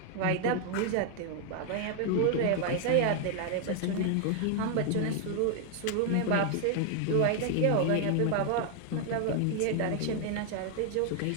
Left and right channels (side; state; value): both; different; correlation 0.00